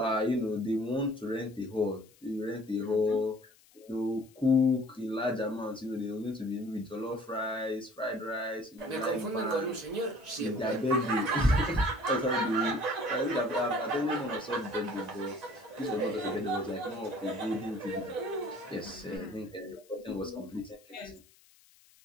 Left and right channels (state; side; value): noise; left; hiss, 28 dB below the sound